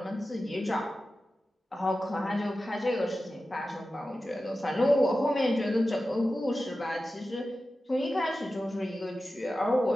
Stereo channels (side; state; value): both; normal; correlation 0.94